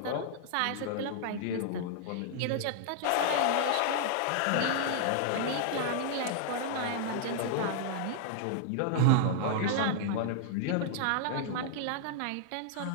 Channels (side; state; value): both; different; correlation -0.01